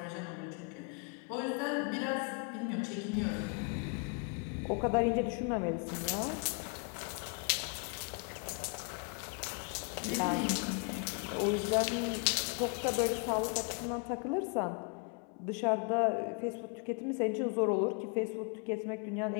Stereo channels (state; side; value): quieter; right; 37.3 dB